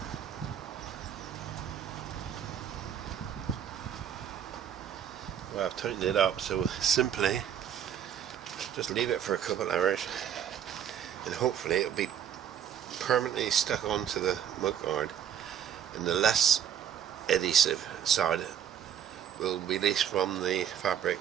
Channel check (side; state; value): left; quieter; 9.2 dB